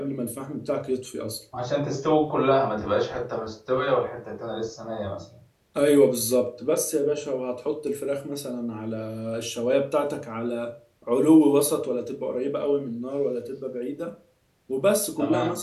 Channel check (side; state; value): both; identical; correlation 1.00